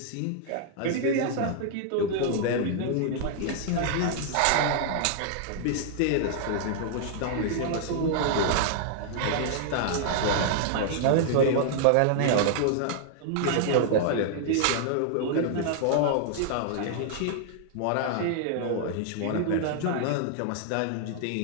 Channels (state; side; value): different; both; correlation -0.01